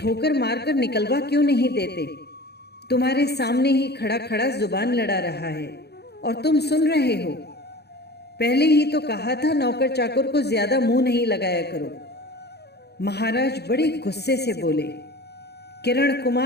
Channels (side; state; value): right; late; 0.48 ms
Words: मारकर निकलवा क्यों नहीं देते? तुम्हारे सामने ही खड़ा खड़ा जुबान लड़ा रहा है और तुम सुन रहे हो। पहले ही तो कहा था नौकर चाकर को ज्यादा मुंह नहीं लगाया करो। महाराज बड़े गुस्से से बोले, किरण